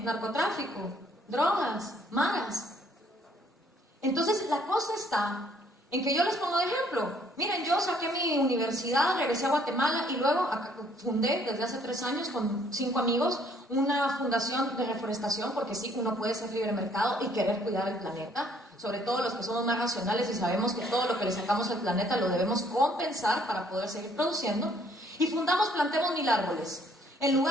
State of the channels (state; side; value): normal; both; correlation 0.63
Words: narcotráfico, drogas, maras. Entonces la cosa está en que yo les pongo de ejemplo. Miren, yo saqué mi universidad, regresé a Guatemala y luego fundé desde hace 3 años con 5 amigos una fundación de reforestación, porque sí, uno puede ser libre mercado y querer cuidar el planeta, sobre todo los que somos más racionales y sabemos que todo lo que le sacamos al planeta lo debemos compensar para poder seguir produciendo. Y fundamos Plantemos 1000 árboles. En